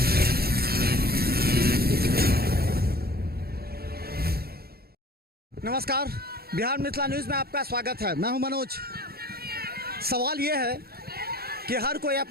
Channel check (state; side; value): late; left; 0.45 ms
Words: नमस्कार, बिहार मिथिला न्यूज़ में आपका स्वागत है। मैं हूं मनोज। सवाल ये है कि हर कोई